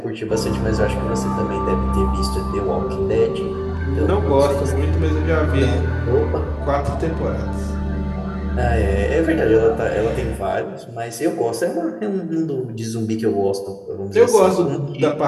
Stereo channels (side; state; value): both; identical; correlation 1.00